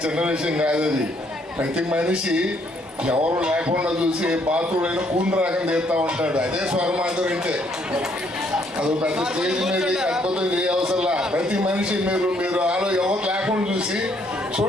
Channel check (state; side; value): normal; both; correlation 0.68